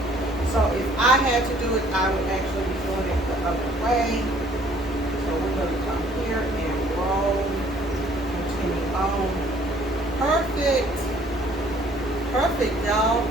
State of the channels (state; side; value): normal; both; correlation 0.59